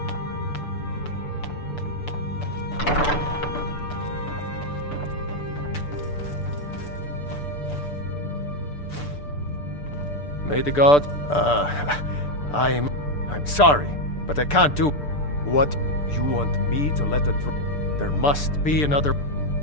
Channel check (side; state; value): right; late; 6.8 ms